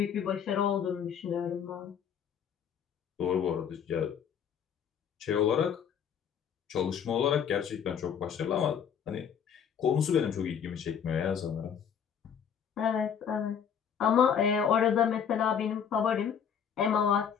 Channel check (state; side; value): quieter; right; 7.9 dB